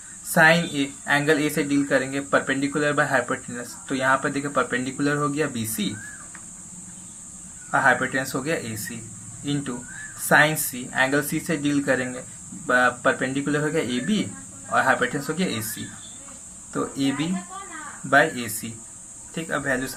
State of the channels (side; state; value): both; identical; correlation 1.00